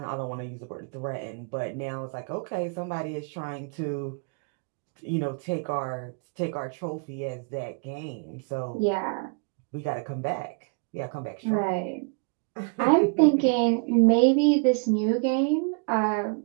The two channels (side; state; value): left; quieter; 39.1 dB